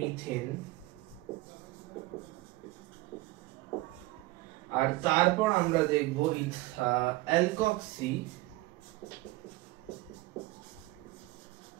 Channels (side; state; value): left; quieter; 19.4 dB